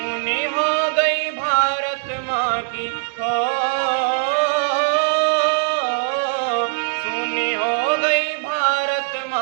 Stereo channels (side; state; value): left; silent; digital silence